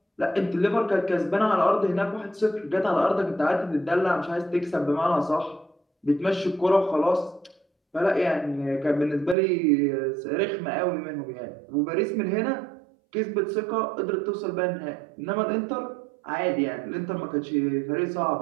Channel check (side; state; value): left; drops out; at 9.3 s